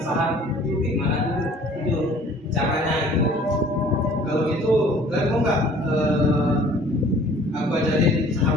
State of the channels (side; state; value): both; normal; correlation 0.52